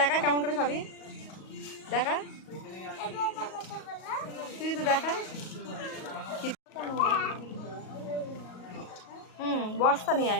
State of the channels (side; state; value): right; late; 38 ms